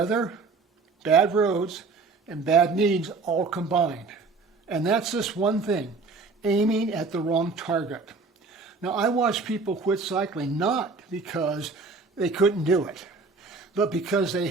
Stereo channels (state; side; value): quieter; left; 4.1 dB